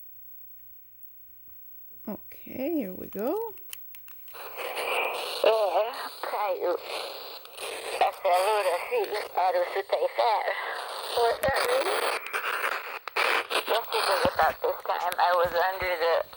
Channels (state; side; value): identical; both; correlation 1.00